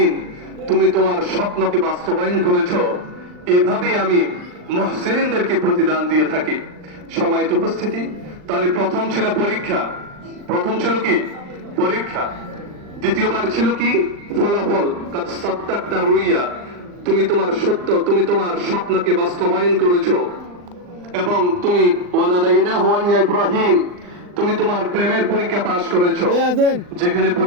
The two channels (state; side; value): late; left; 39 ms